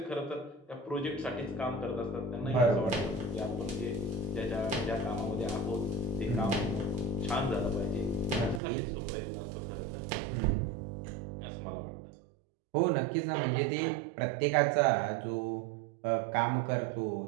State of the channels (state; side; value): drops out; left; at 8.6 s